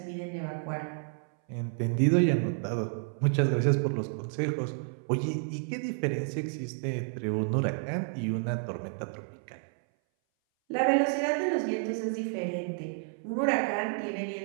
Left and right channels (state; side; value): silent; left; 58 dB below the other